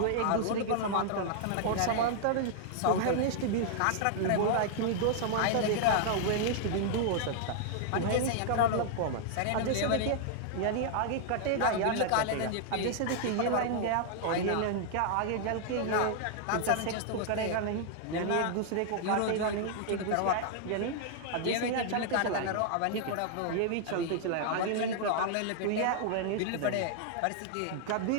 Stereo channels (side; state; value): both; different; correlation -0.01